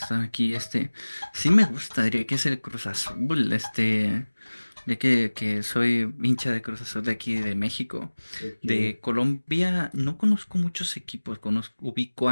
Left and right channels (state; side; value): inverted; both; correlation -1.00